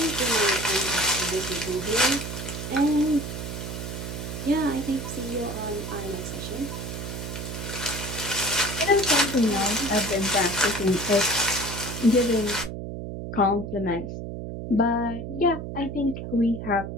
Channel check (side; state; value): right; noise; hum, 7 dB below the sound